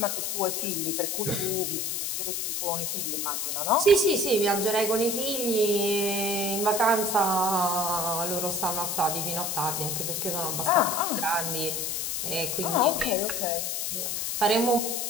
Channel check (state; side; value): noise; left; hiss, 1 dB below the sound